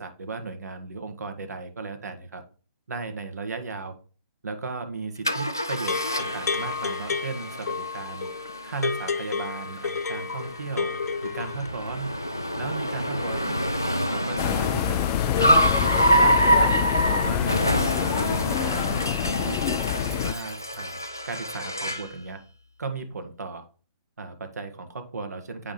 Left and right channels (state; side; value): inverted; both; correlation -0.59